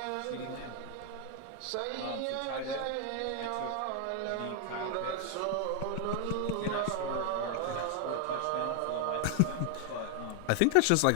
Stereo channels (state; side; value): different; both; correlation 0.00